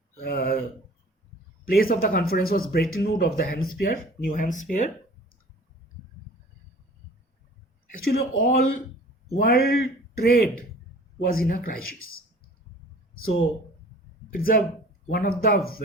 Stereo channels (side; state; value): both; normal; correlation 0.47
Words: of the conference was Bretton Woods of the Hampshire, New Hampshire. Actually, all world trade was in a crisis. So it's one of the